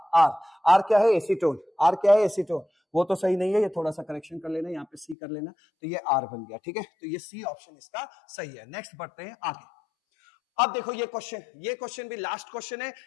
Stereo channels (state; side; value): drops out; right; at 5.2 s